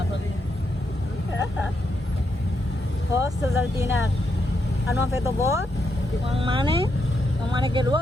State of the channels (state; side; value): normal; both; correlation 0.81